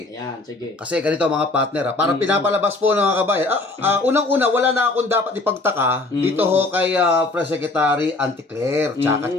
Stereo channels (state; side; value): quieter; right; 3.2 dB